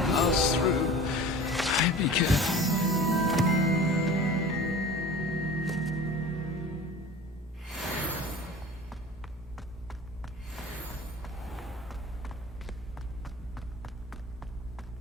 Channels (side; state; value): both; normal; correlation 0.39